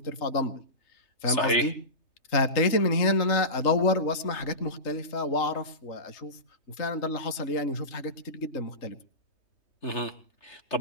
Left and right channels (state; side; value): late; right; 3.2 ms